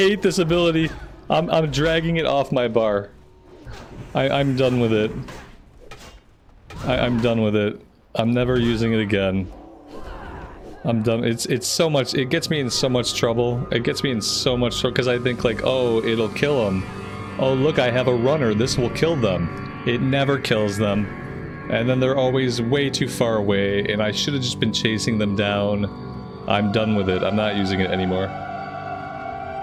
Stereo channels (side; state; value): both; identical; correlation 1.00